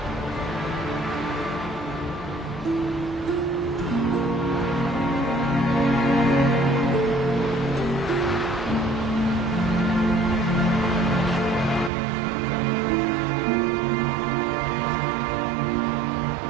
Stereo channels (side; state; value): left; drops out; at 11.9 s